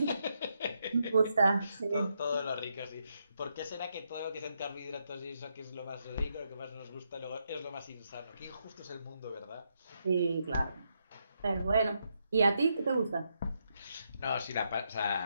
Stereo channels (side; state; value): both; inverted; correlation -0.81